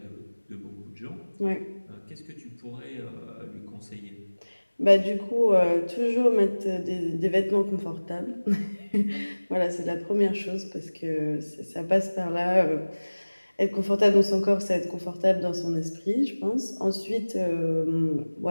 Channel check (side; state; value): both; inverted; correlation -1.00